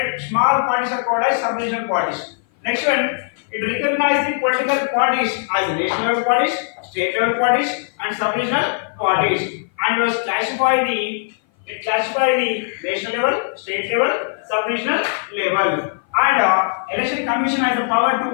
Small parties are called as sub-regional parties. Next one, it recognizes the political parties as national level parties, state level parties, and sub-regional parties, and was classified the national level, state level, sub-regional level. And Election Commission has the power to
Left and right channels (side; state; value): right; silent; 57 dB below the other